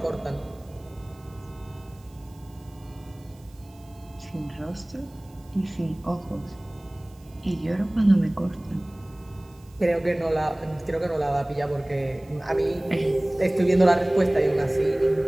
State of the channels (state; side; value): noise; right; hiss, 29 dB below the sound